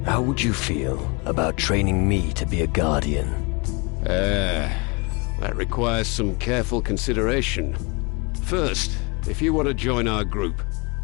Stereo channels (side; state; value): right; quieter; 29.7 dB